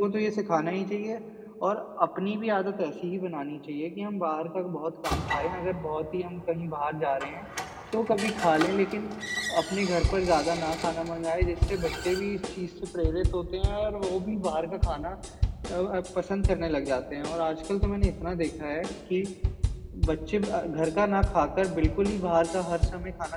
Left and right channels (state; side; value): identical; both; correlation 1.00